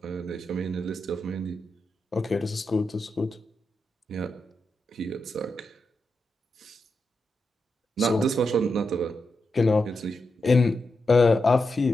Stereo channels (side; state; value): both; normal; correlation 0.87